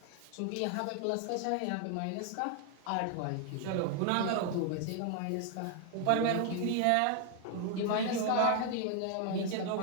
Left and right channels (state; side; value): different; both; correlation 0.00